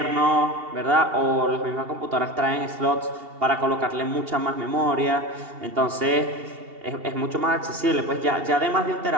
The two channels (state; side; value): late; left; 2.8 ms